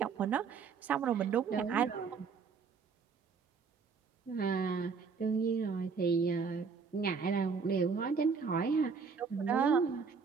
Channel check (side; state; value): left; quieter; 5.5 dB